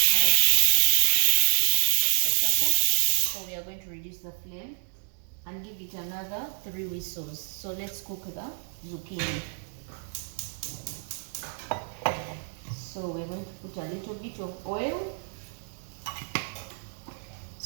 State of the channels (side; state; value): left; silent; digital silence